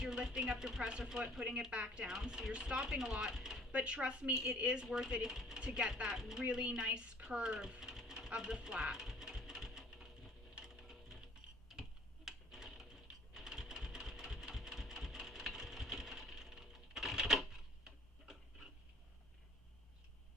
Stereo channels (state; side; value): normal; both; correlation 0.53